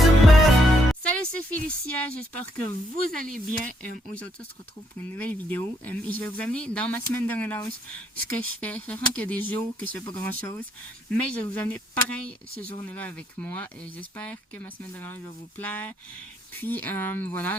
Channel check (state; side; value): normal; both; correlation 0.73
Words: Salut, c'est Félicia, j'espère que vous allez bien. Aujourd'hui, on se retrouve pour une nouvelle vidéo et je vais vous amener dans ma semaine de relâche ce que je fais, sachant qu'il y a des jours que je fais pas grand chose, mais je vais vous amener pareil ces journées-là avec moi et j'espère que ma semaine de relâche va vous plaire. Puis